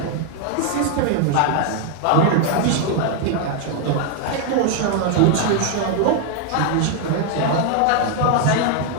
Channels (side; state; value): both; different; correlation 0.00